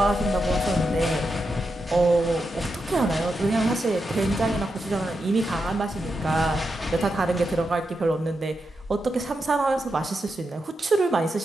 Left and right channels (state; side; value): normal; both; correlation 0.87